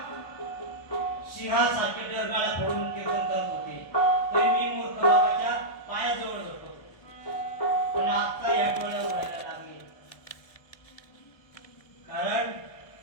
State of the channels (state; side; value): late; right; 1.2 ms